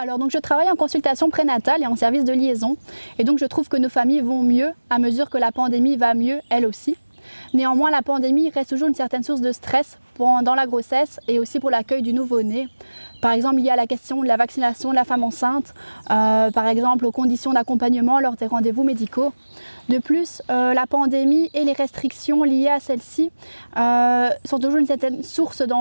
donc je travaille en consultation prénatale et en service de liaison et donc je trouve que nos familles vont mieux à mesure que la pandémie va mieux elle aussi. Néanmoins la pandémie reste toujours une certaine source de stress pendant la grossesse et aussi pour l'accueil du nouveau-né. Par exemple lié à la question de la vaccination de la femme enceinte, par exemple aux conditions d'accompagnement lors des rendez-vous médicaux. De plus, la pandémie et les restrictions liées à celle-ci sont toujours une certaine source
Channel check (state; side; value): inverted; both; correlation -1.00